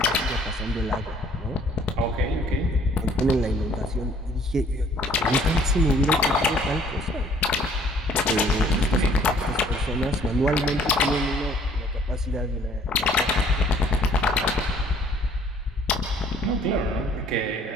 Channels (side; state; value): both; normal; correlation 0.58